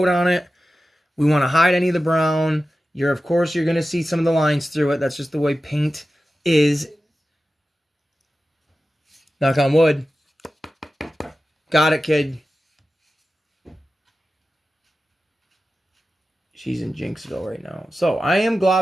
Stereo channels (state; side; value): normal; both; correlation 0.94